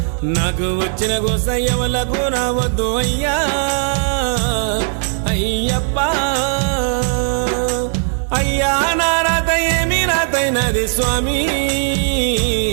నాకు వచ్చిన గోసయ్యవలకు రావద్దు అయ్యా అయ్యప్ప అయ్యా నా రాత ఏమి రాతైనది స్వామి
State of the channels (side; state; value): left; silent; 68 dB below the other